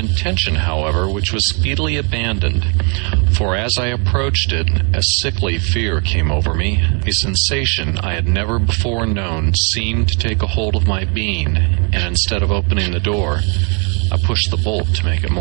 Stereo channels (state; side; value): quieter; left; 36.7 dB